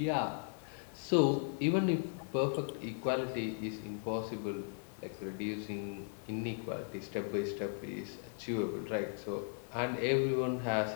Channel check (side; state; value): right; silent; 53 dB below the other